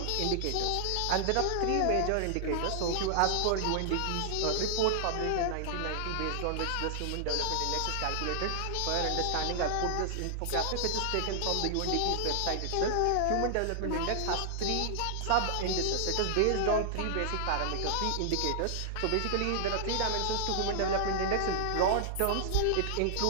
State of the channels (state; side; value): different; both; correlation -0.01